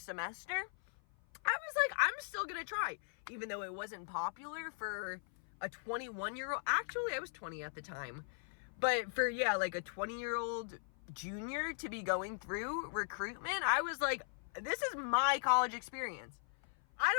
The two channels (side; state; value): right; silent; 52 dB below the other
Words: semester, I was like, I'm still going to try. Even though it wasn't popular for a 21-year-old. Actually, I was 20 at the time. But for, like a 20-year-old junior to be going through recruitment, I was like, this is my college experience. I